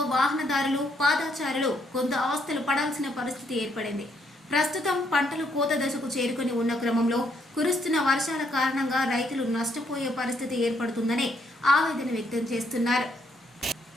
వాహనదారులు, పాదచారులు కొంత అవస్థలు పడాల్సిన పరిస్థితి ఏర్పడింది. ప్రస్తుతం పంటలు కోత దశకు చేరుకుని ఉన్న క్రమంలో కురుస్తున్న వర్షాల కారణంగా రైతులు నష్టపోయే పరిస్థితి ఏర్పడుతుందని ఆవేదన వ్యక్తం చేస్తున్నారు.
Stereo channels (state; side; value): normal; both; correlation 0.72